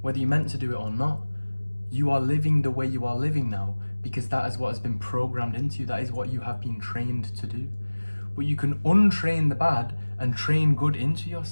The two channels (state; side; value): inverted; both; correlation -1.00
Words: whether you meant to do it or not. You are living the way you are living now because that is what has been programmed into you. That is what you have been trained to do. But you can untrain the bad and train good into